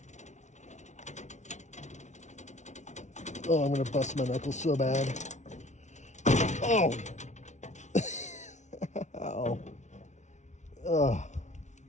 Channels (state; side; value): late; right; 0.34 ms